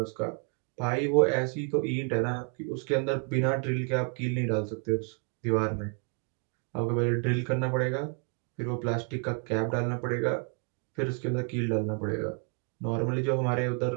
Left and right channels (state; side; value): quieter; left; 37.9 dB